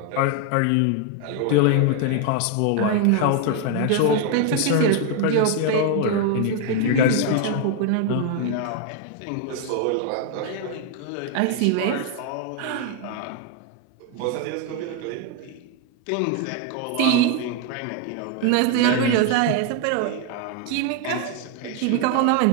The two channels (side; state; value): both; different; correlation 0.01